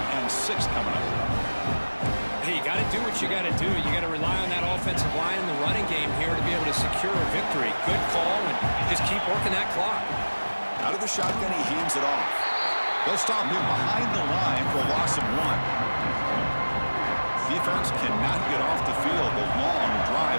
and 6 coming up. Hey, you got to do what you got to do. You got to rely on that offensive line in the running game here to be able to secure a victory. Good call, and just keep working that clock. Out of the shotgun, he hands it off. They'll stop him behind the line for a loss of 1. Defense cannot get off the field. The long drive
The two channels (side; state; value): both; inverted; correlation -1.00